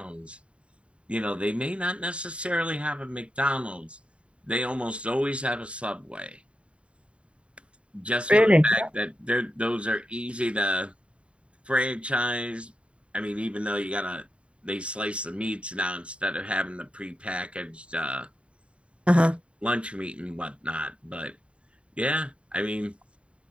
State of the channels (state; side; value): late; left; 0.060 ms